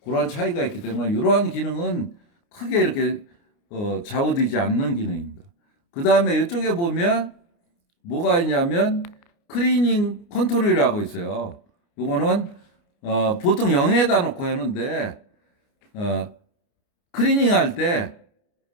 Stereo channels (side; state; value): right; late; 29 ms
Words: 그런 차이가 있기 때문에 이러한 기능은 크게 이렇게 좌우되지 않는 기능입니다. 그 다음에 이쪽에 보면 뭐가 있냐면 클리닝 컨트롤이라고 있어요. 요거는 보통 0에다 놓고 하는데 클리닝 할 때